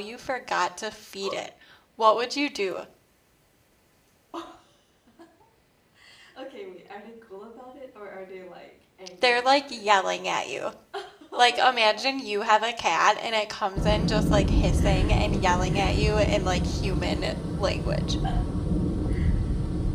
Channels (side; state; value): both; identical; correlation 1.00